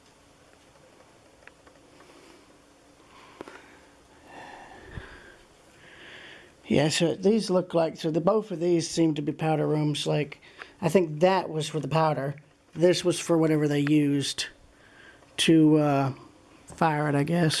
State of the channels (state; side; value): identical; both; correlation 1.00